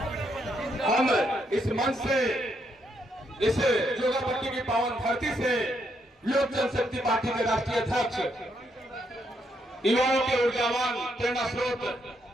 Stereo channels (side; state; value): both; normal; correlation 0.77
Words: हम इस मंच से, इस जोगापट्टी की पावन धरती से लोक जनशक्ति पार्टी के राष्ट्रीय अध्यक्ष, युवाओं के ऊर्जावान प्रेरणा स्रोत